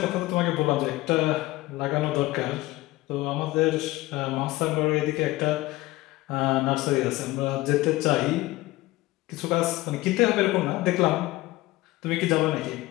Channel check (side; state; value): right; quieter; 18.8 dB